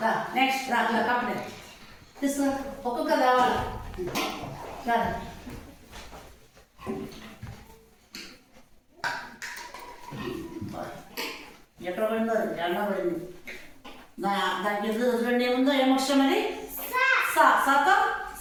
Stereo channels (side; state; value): both; identical; correlation 1.00